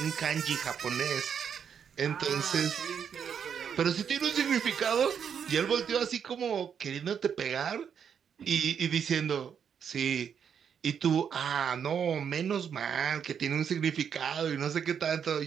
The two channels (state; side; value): quieter; left; 7.6 dB